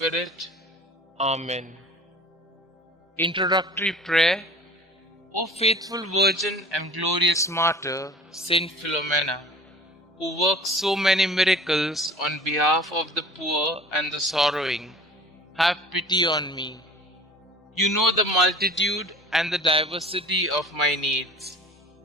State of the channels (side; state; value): both; normal; correlation 0.43